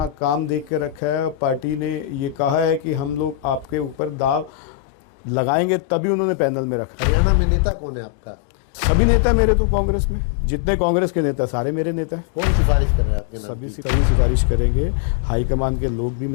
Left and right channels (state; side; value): drops out; right; at 4.5 s